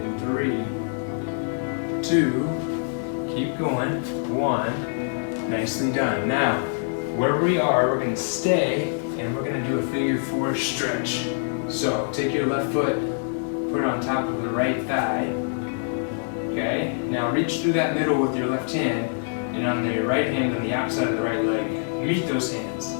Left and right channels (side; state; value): right; silent; 62 dB below the other